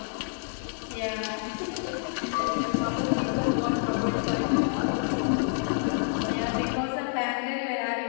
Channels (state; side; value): silent; right; digital silence